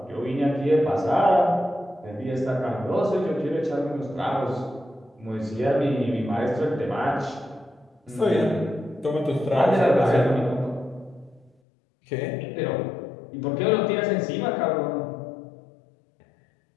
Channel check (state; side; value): drops out; right; at 11.5 s